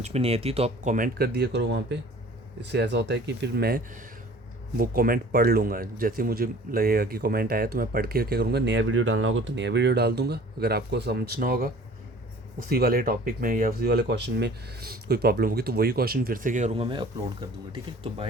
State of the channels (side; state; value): both; normal; correlation 0.48